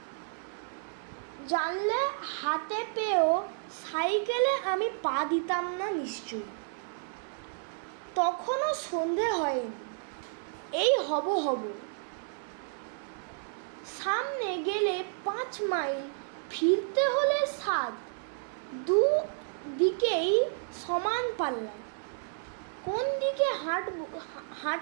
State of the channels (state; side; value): silent; left; 57 dB below the other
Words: জানলে হাতে পেয়েও সাইকেলে আমি পা দিতাম না নিশ্চয়ই। তখনও সন্ধে হয়নি, এই হব। সামনে গেলে 5 মাইল, ফিরতে হলে 7। দুদিকেই সমান পাল্লা। কোন দিকে